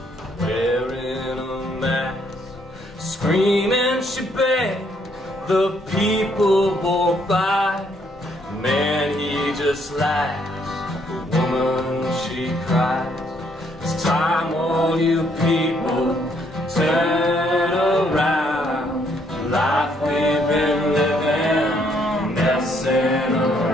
wearing a mask, screaming she begged, the people walk by. Man, he just laughs, the woman she cries. It's time all you people turn around. Life we've been living, messing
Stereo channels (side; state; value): both; normal; correlation 0.69